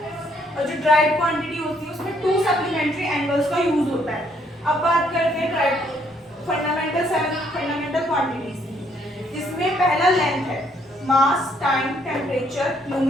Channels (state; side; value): normal; both; correlation 0.68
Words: और जो डायरेक्ट क्वांटिटी होती है उसमें 2 सप्लीमेंट्री एंगल्स का यूज होता है. अब बात करते हैं डायरेक्ट फंडामेंटल क्वांटिटीज, जिसमें पहला लेंथ है, mass, time, temperature,